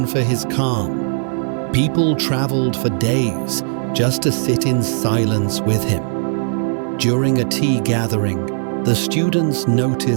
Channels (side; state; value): left; silent; 56 dB below the other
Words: for his calm. People traveled for days just to sit in silence with him. During a tea gathering, the students